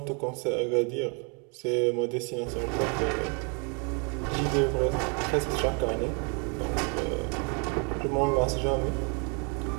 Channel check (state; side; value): quieter; left; 35.8 dB